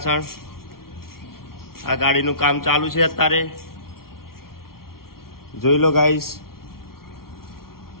આ ગાડીનું કામ ચાલુ છે અત્યારે, જોઈ લો ગાઈસ.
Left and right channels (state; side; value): late; right; 0.93 ms